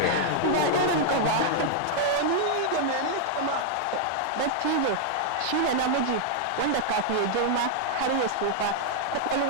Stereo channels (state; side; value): different; both; correlation -0.01